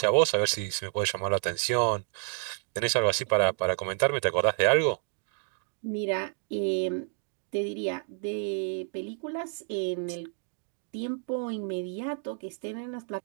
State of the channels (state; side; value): silent; left; 58 dB below the other